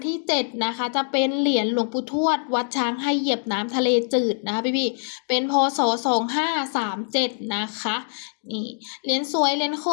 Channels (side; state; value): right; silent; digital silence